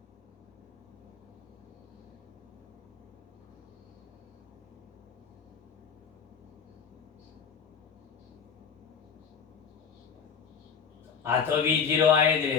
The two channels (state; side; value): quieter; right; 6.5 dB